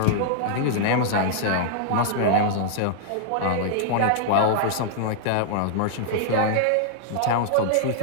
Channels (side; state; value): both; different; correlation -0.01